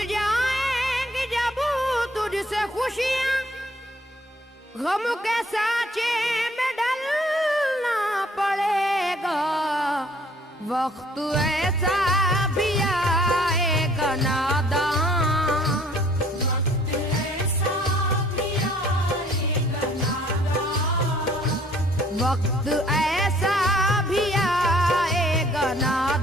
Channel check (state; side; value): normal; both; correlation 0.59